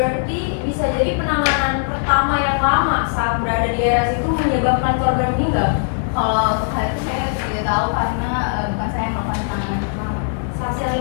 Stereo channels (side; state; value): right; silent; digital silence